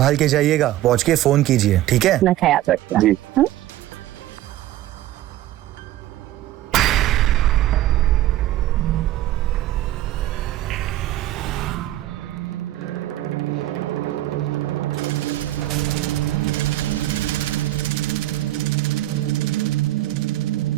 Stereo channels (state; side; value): quieter; left; 14.6 dB